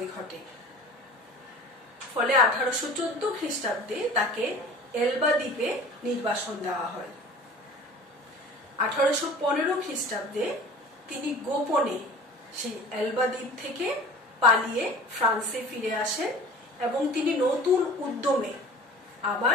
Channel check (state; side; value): normal; both; correlation 0.42